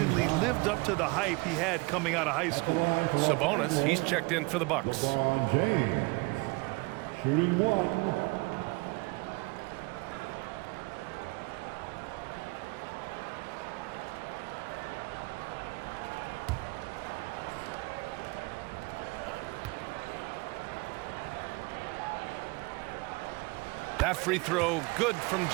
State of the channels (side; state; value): left; quieter; 26.4 dB